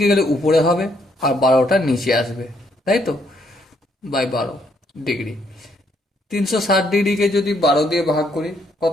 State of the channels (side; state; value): both; normal; correlation 0.71